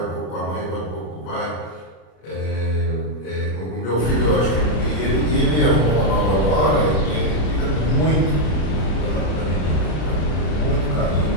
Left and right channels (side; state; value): right; late; 33 ms